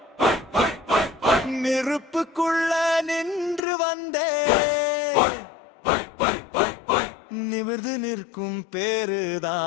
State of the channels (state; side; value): drops out; right; at 3.6 s